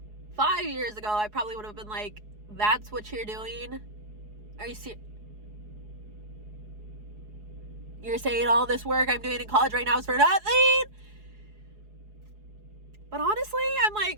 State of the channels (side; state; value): left; late; 4.8 ms